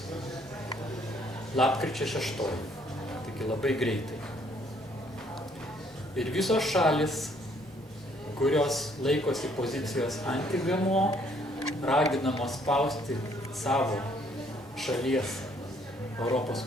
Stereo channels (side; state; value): both; normal; correlation 0.65